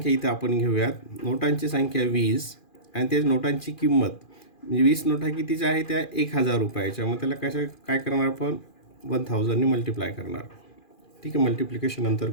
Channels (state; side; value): late; right; 2.4 ms